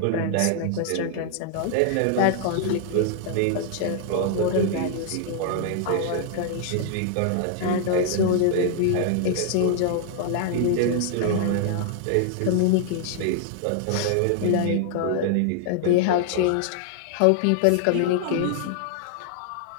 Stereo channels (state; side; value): different; both; correlation -0.01